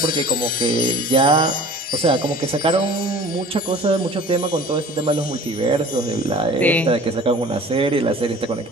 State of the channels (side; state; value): both; normal; correlation 0.44